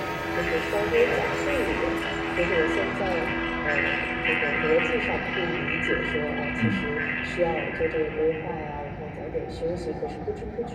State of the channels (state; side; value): identical; both; correlation 1.00